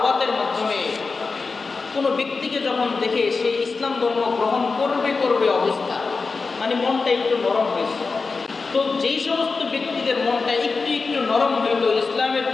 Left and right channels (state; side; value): quieter; right; 4.3 dB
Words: মাধ্যমে কোনো ব্যক্তিকে যখন দেখে সে ইসলাম ধর্ম গ্রহণ করবে অবস্থা, মানে মনটা একটু নরম হয়েছে। তো যেই সমস্ত ব্যক্তিদের মনটা একটু নরম হইতো, ইসলামের